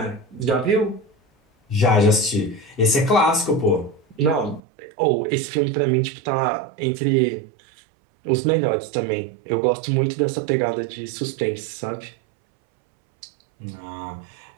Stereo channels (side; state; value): left; drops out; at 4.6 s